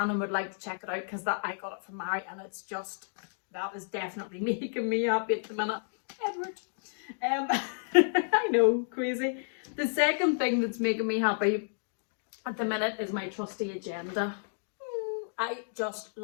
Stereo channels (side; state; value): right; silent; digital silence